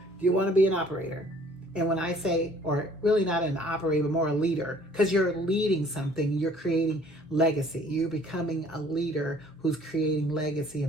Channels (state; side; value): normal; both; correlation 0.56